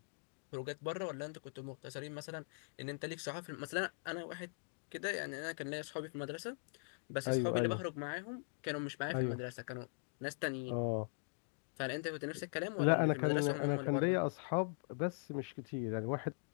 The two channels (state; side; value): silent; right; digital silence